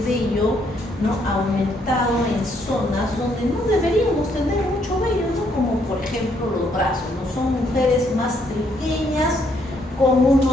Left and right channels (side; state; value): both; normal; correlation 0.71